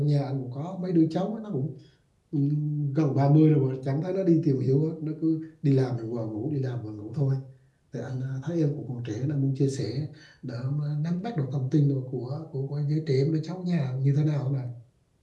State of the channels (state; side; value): identical; both; correlation 1.00